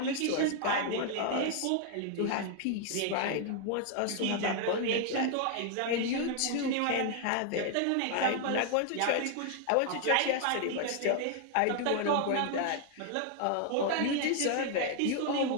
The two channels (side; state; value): both; different; correlation 0.00